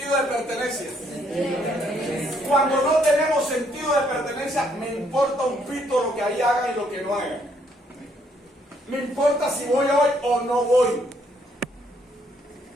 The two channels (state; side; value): normal; both; correlation 0.69